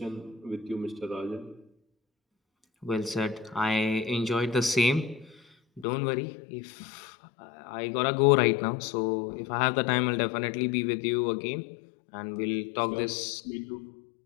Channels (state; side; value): drops out; right; at 5.9 s